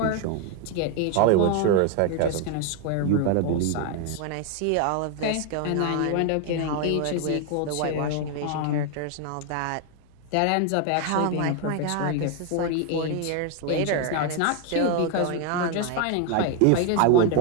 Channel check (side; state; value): both; different; correlation 0.01